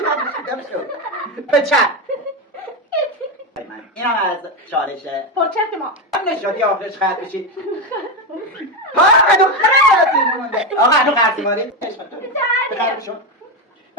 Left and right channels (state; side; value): normal; both; correlation 0.11